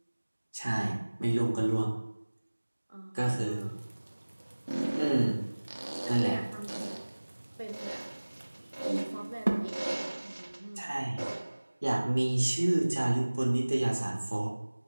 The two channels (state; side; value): inverted; both; correlation -1.00